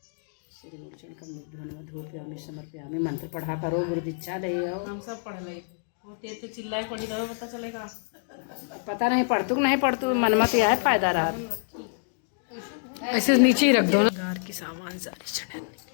मंत्र पढ़ा करो गुरु दीक्षा ले आओ हम सब पढ़ ले होते थे चिल्लाए पड़ी तो पता चलेगा पता नहीं पढ़तू नहीं पढ़तू मन मत यह फायदा रहा ऐसे नीचे ही रख दो ना घर के सामान सारे चढ़े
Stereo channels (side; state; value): right; silent; digital silence